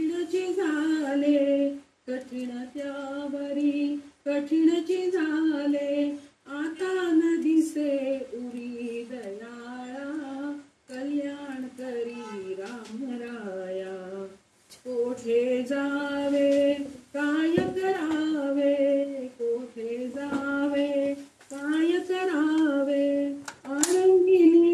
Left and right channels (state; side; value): identical; both; correlation 1.00